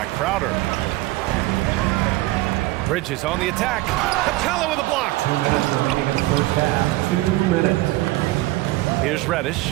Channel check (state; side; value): quieter; left; 18.8 dB